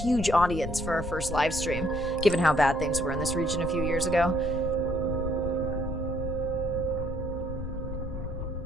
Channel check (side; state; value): left; noise; rumble, 6 dB below the sound